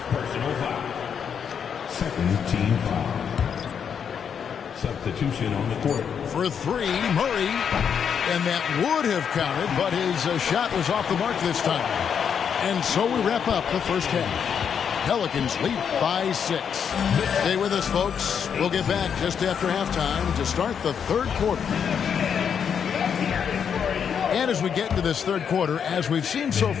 Personal foul. Second team foul. Substitution on the court. For 3, Murray. And that would have counted, but his shot was off the mark this time. And so we wrap up the first half. Pelicans lead by 6. Stay with us, folks. We'll get back just after halftime to start the third quarter. And as we get into this third quarter, as we've seen so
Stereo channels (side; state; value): right; quieter; 7.5 dB